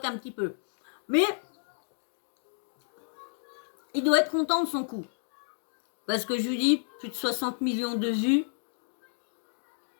petit peu. Mais, il doit être content de son coup. Parce que je lui dis, plus de 60 millions de vues.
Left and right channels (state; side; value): silent; right; digital silence